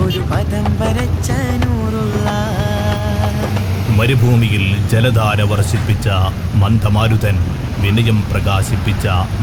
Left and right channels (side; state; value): both; identical; correlation 1.00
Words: പദം വരച്ച നൂറുല്ലാഹ്. മരുഭൂമിയിൽ ജലധാര വർഷിപ്പിച്ച മന്ദമാരുതൻ, വിനയം പ്രകാശിപ്പിച്ച